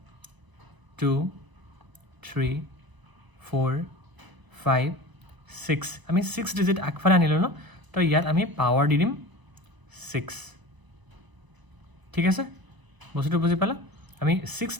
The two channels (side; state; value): left; late; 1.0 ms